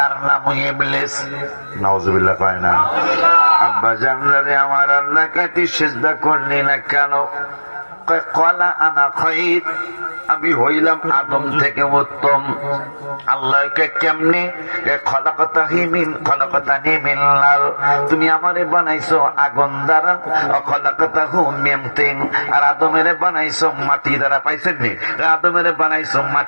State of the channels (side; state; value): both; inverted; correlation -1.00